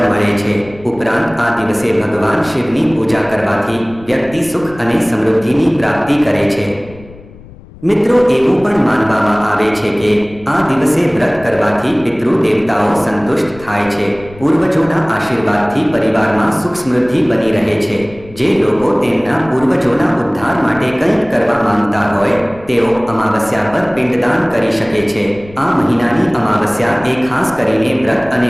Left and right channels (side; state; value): left; noise; rumble, 20 dB below the sound